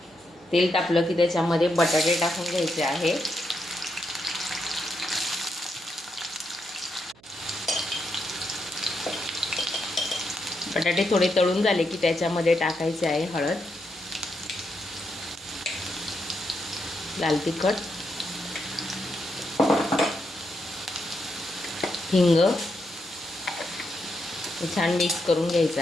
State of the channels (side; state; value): right; noise; hum, 28 dB below the sound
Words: तेल तापलं की त्याच्यामध्ये बटाटे टाकून घ्यायचे आहे. बटाटे थोडे तळून झाले की त्याच्यामध्ये टाकायचे आहे हळद, लाल तिखट, हिंग. छान मिक्स करून घ्यायचं